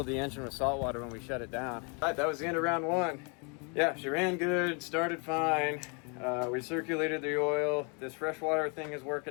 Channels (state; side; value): quieter; right; 34.7 dB